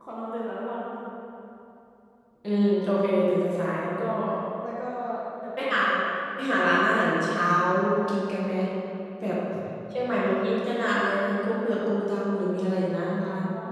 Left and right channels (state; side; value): identical; both; correlation 1.00